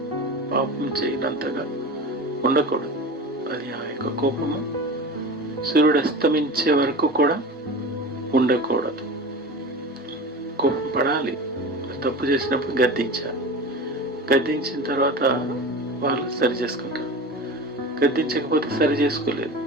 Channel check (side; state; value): both; normal; correlation 0.31